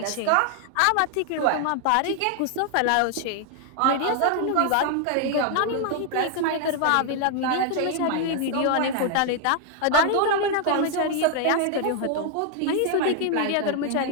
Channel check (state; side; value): different; both; correlation 0.00